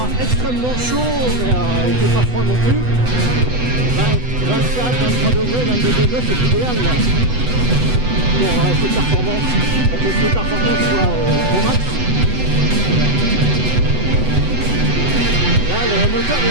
extrêmement chaud, mais il ne fait pas froid non plus. 24, 23 degrés, 22 degrés, c'est l'idéal là pour ces performances, pour que ces performances soient au max. Là, le moteur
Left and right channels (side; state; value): left; late; 8.0 ms